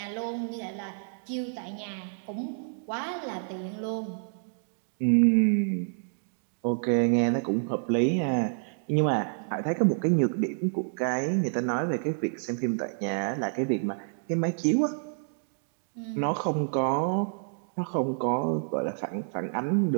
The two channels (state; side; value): silent; left; digital silence